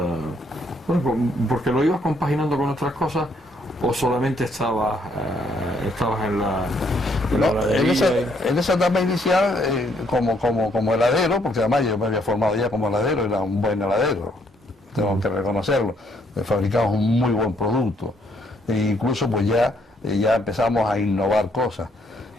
porque lo ibas compaginando con otras cosas, o solamente estabas en en esa etapa inicial como heladero, porque además yo me había formado ya como heladero, era un buen heladero, tengo que reconocerlo, fabricamos un muy buen producto, e incluso pues ya empezamos a innovar cosas.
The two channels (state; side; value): normal; both; correlation 0.70